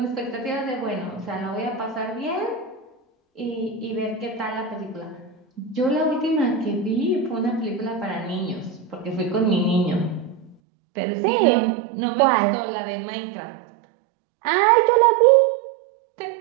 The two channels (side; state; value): left; drops out; at 10.6 s